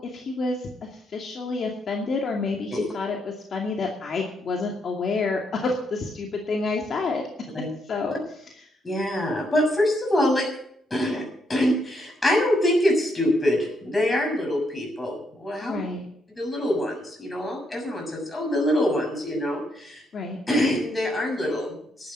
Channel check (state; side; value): normal; both; correlation 0.77